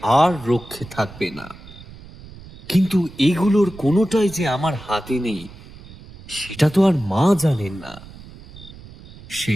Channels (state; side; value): noise; right; rumble, 18 dB below the sound